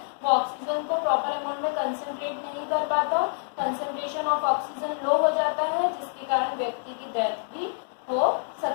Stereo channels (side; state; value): right; silent; digital silence